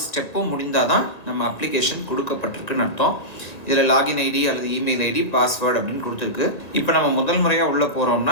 ஸ்டெப்பும் முடிந்தால் தான் நம்ம அப்ளிகேஷன் கொடுக்கப்பட்டிருக்குன்னு அர்த்தம். இதில் லாகின் ஐடி அல்லது இமெயில் ஐடி, பாஸ்வேர்டு அப்படின்னு கொடுத்துருக்கு. இப்போ நம்ம முதல் முறையாக உள்ளே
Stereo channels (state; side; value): late; right; 1.8 ms